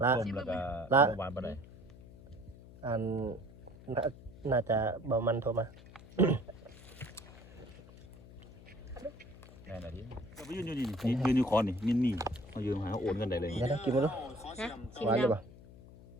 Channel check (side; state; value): left; noise; hum, 19 dB below the sound